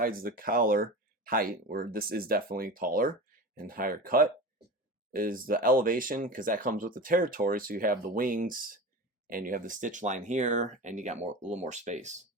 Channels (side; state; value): both; normal; correlation 0.30